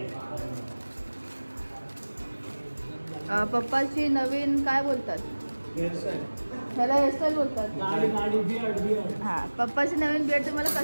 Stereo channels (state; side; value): inverted; both; correlation -1.00